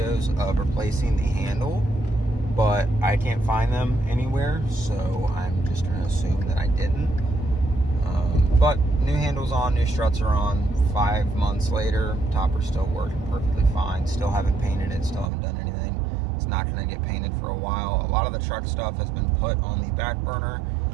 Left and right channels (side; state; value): left; drops out; at 15.3 s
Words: of replacing the handle, but I can't find them anywhere, so I'm just going to assume that I didn't. But new handle's on, new struts are on. 5 months later, topper's still working perfectly fine. Still haven't painted it, still haven't done anything. It's not going to get painted for a while. A lot of the truck stuff has been put on the back burner.